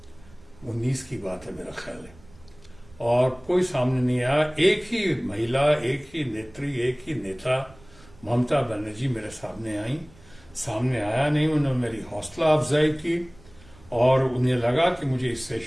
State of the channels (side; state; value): right; noise; rumble, 25 dB below the sound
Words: 19 की बात है मेरा ख्याल है, और कोई सामने नहीं आया। एक ही महिला, एक ही नेत्री, एक ही नेता ममता बनर्जी मेरे सामने आई। सामने आया नहीं, उन्होंने मेरी हौसला अफजाई की और उन्हें लगा कि मुझे इस